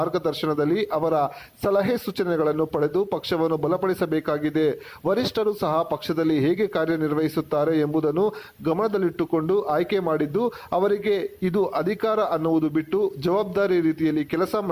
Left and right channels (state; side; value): identical; both; correlation 1.00